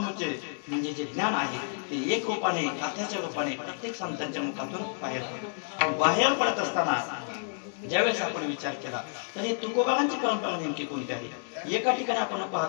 म्हणजे जे ज्ञान आहे ते एक रूपाने, गाथ्याच्या रूपाने प्रत्येक संतांच्या मुखातून बाहेर पडत असताना ज्यावेळेस आपण विचार केला तर हे तुकोबारांची परंपरा नेमकी कोणती आहे। एका ठिकाणी आपण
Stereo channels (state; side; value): silent; right; 58 dB below the other